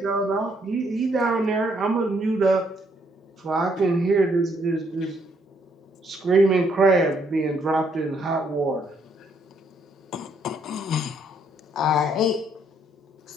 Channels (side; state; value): both; normal; correlation 0.70